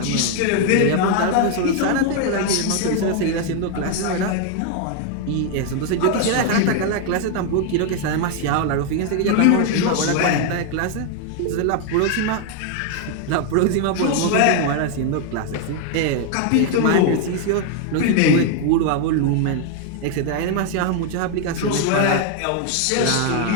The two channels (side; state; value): both; different; correlation 0.00